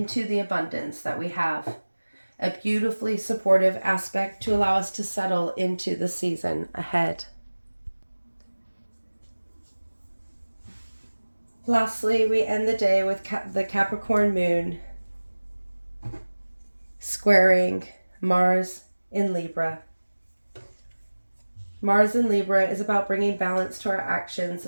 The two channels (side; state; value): both; inverted; correlation -1.00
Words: the abundance that we have. A beautifully supportive aspect to allow us to settle into the season ahead. Lastly, we end the day with the Capricorn moon squaring Mars in Libra. Mars in Libra is about bringing balance to our actions